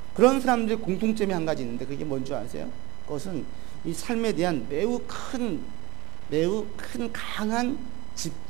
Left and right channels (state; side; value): quieter; left; 22.1 dB